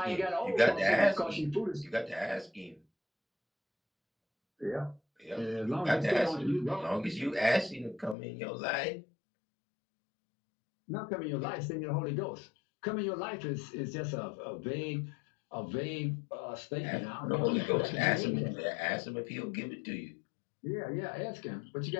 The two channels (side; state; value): right; drops out; at 8.2 s